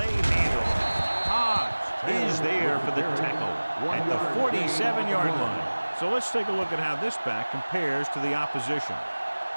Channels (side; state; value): both; inverted; correlation -1.00